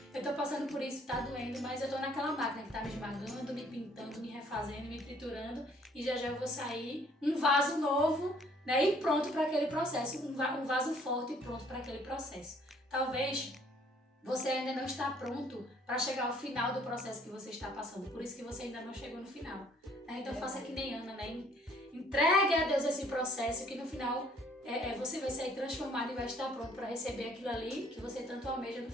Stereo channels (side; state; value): both; normal; correlation 0.61